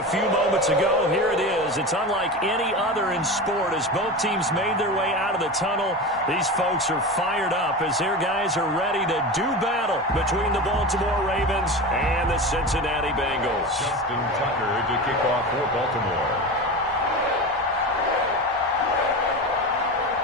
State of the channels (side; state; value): both; normal; correlation 0.26